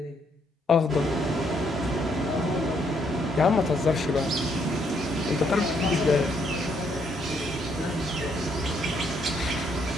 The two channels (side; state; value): both; normal; correlation 0.72